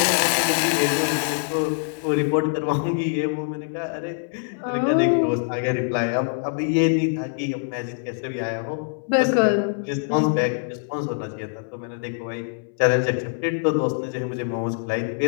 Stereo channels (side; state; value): right; silent; 63 dB below the other